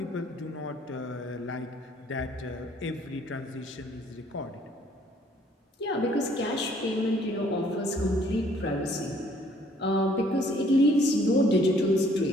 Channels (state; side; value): normal; both; correlation 0.61